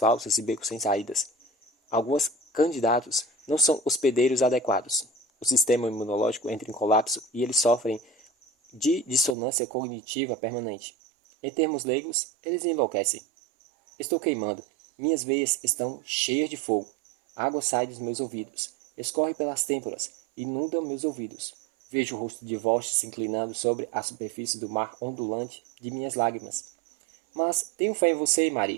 e becos sem saídas. Alguns candidatos não são hospedeiros adequados. O sistema imunológico entra em colapso e eles sofrem de dissonância cognitiva permanente. Em termos leigos, eles enlouquecem. Estou queimando. Minhas veias estão cheias de fogo. A água sai dos meus ouvidos. Escorre pelas têmporas. Inunda meus ouvidos. Vejo o rosto de Vosh se inclinando sobre a superfície do mar ondulante de minhas lágrimas. Mas tenho fé em você,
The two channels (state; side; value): drops out; left; at 9.3 s